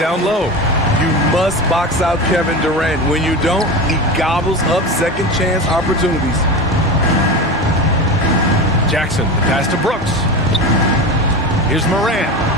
low. You must box out Kevin Durant. When you don't, he gobbles up second chance opportunities. Jackson, the pass to Brooks. Here's Morant.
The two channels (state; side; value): normal; both; correlation 0.25